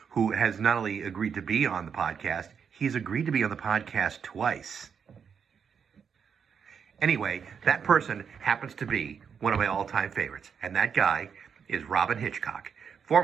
who has not only agreed to be on the podcast, he's agreed to be on the podcast twice. Anyway, that person happens to be one of my all-time favorites, and that guy is Robyn Hitchcock,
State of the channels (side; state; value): left; quieter; 6.9 dB